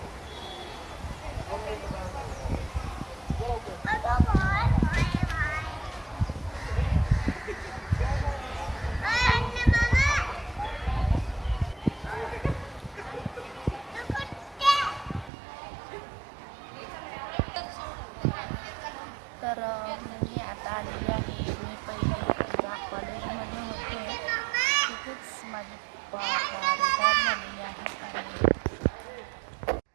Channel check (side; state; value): left; drops out; at 15.3 s